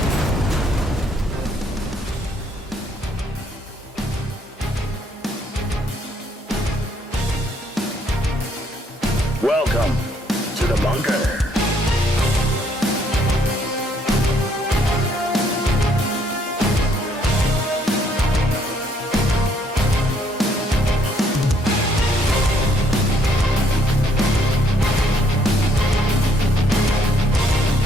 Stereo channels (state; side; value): normal; both; correlation 0.67